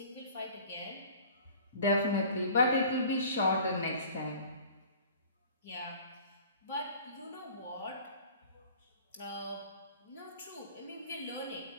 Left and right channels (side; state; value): both; inverted; correlation -0.46